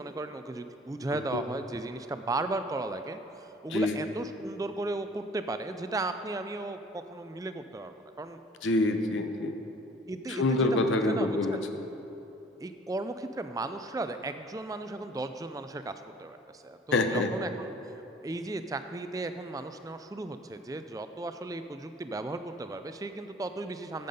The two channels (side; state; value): both; normal; correlation 0.51